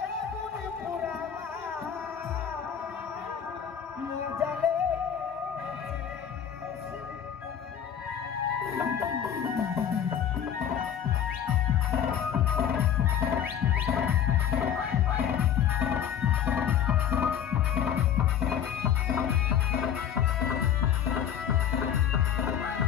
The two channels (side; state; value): right; quieter; 8.9 dB